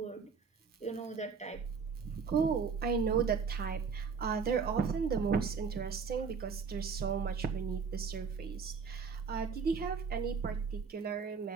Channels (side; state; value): left; quieter; 5.7 dB